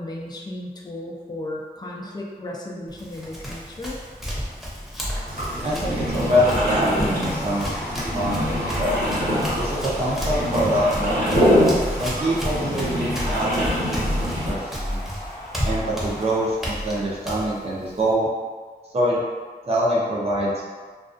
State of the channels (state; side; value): normal; both; correlation 0.61